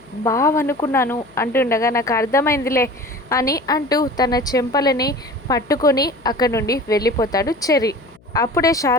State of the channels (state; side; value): noise; left; hum, 29 dB below the sound